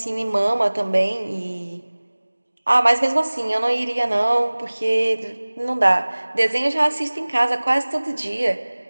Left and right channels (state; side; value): inverted; both; correlation -1.00